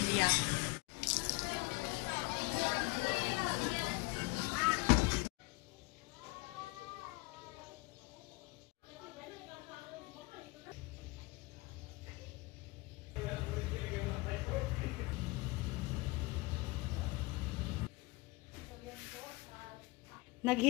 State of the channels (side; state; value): right; quieter; 24.0 dB